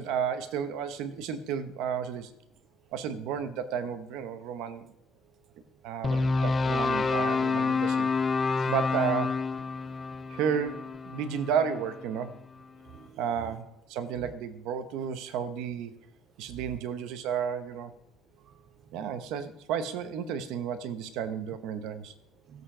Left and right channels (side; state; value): both; normal; correlation 0.59